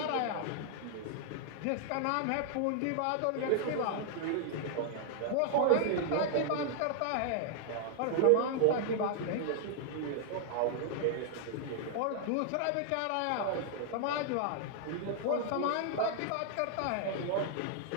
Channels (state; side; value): different; both; correlation 0.00